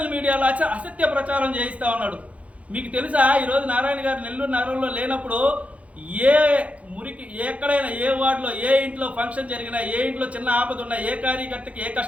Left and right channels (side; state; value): left; late; 0.065 ms